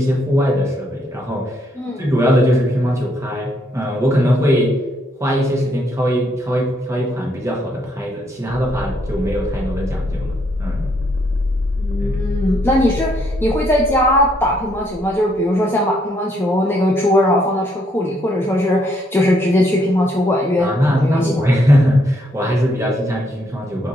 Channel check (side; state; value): both; normal; correlation 0.72